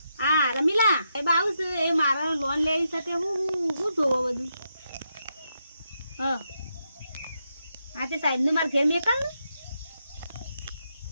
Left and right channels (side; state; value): both; inverted; correlation -0.83